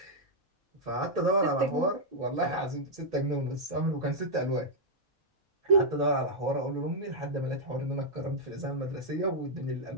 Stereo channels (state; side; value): normal; both; correlation -0.05